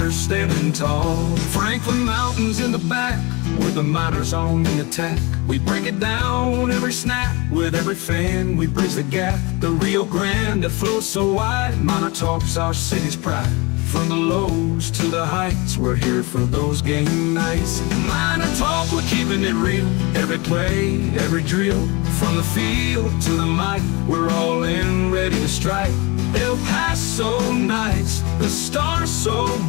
standing tall. Franklin Mountains in the back, with the miners on the attack. We break it down every snap, with every fan we bridge the gap. The Rio Grande that flows so wide, MinerTalk's our city's pride. From the lows to the heights, we're here for those game nights. MinerTalk, we're keeping it real. Every play, every drill, from the field to the mic, we're all in, ready to strike. El Paso nights, the stars so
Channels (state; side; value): quieter; right; 26.4 dB